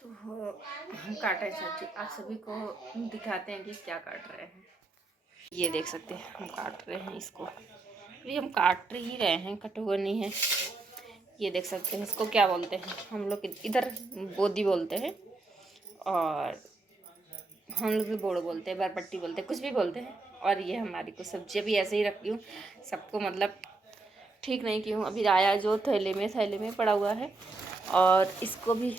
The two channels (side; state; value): left; quieter; 3.4 dB